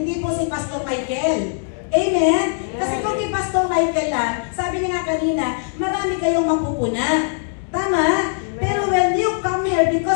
po si Pastor Michael. Amen? Kasi kung kay Pastor Michael lang, sabi niya nga kanina, marami kayong mapupuna. Tama? Pero when you come here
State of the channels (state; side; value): silent; right; digital silence